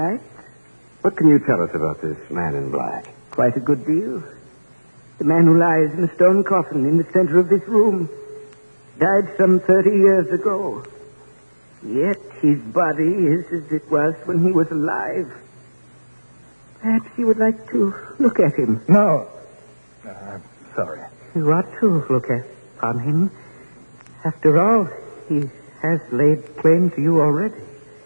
What can you tell us about this man in black? Quite a good deal. The man who lies in a stone coffin in the center of this room died some 30 years ago. Yet his body is as it was when he was alive. Perhaps you would like to look at him. No. I'm sorry. You ought to look upon him. After all, he has laid claim to you already.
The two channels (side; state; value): both; inverted; correlation -1.00